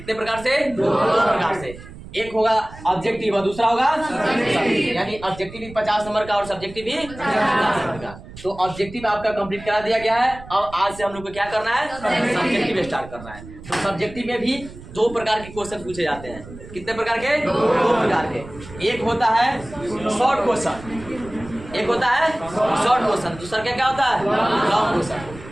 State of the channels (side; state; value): right; noise; rumble, 16 dB below the sound